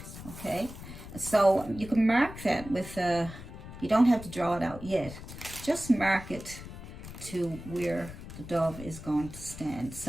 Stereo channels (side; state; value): left; noise; rumble, 13 dB below the sound